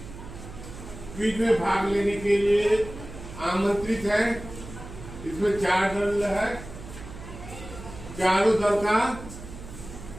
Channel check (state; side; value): noise; right; hum, 13 dB below the sound